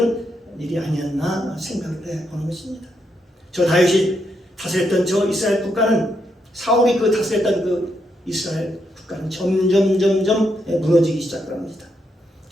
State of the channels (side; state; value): both; normal; correlation 0.80